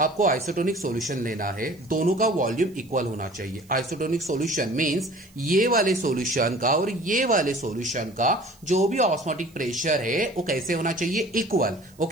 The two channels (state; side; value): noise; right; hiss, 29 dB below the sound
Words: आइसोटोनिक सॉल्यूशन लेना है, दोनों का वॉल्यूम इक्वल होना चाहिए। आइसोटोनिक सॉल्यूशन मींस ये वाले सॉल्यूशन का और ये वाले सॉल्यूशन का जो भी ऑस्मोटिक प्रेशर है वो कैसे होना चाहिए, इक्वल।